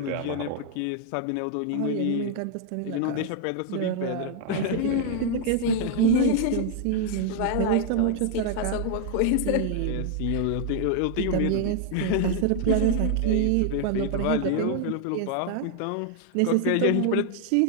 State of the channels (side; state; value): both; different; correlation 0.00